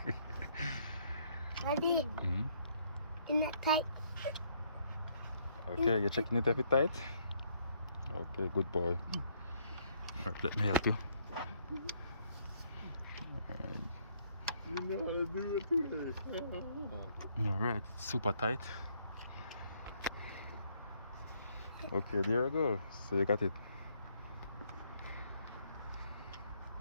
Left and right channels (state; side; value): inverted; both; correlation -0.68